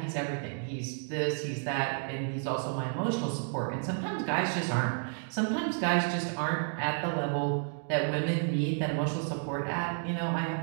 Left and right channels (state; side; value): silent; left; 57 dB below the other